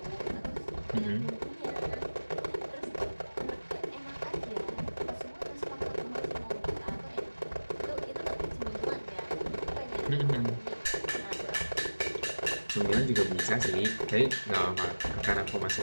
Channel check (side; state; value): both; inverted; correlation -1.00